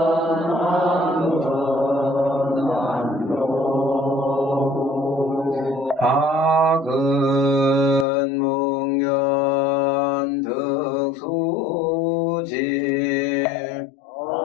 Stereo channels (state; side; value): drops out; right; at 8.1 s